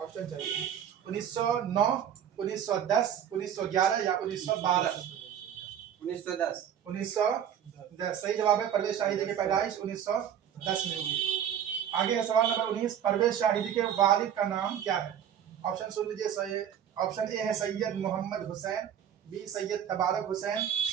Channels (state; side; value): quieter; left; 9.4 dB